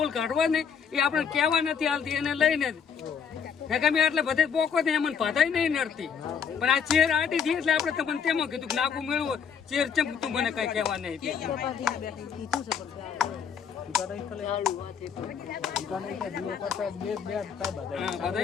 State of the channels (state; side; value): quieter; right; 7.0 dB